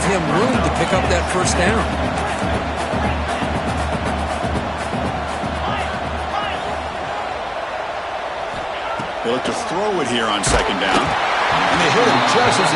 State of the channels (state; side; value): identical; both; correlation 1.00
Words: him room to pick up that first down. They look to throw it here on second down. And they hit him just as